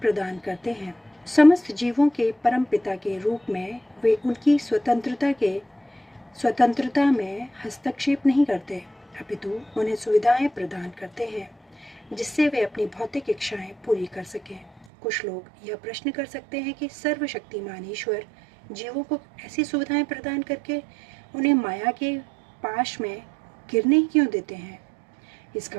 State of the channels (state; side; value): drops out; left; at 14.9 s